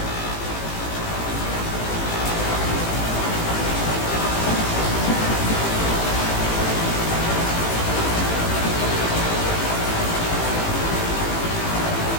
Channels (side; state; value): right; late; 18 ms